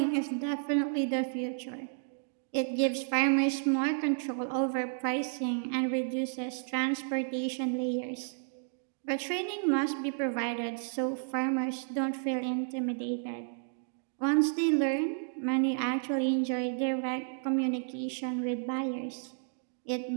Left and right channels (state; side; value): silent; left; digital silence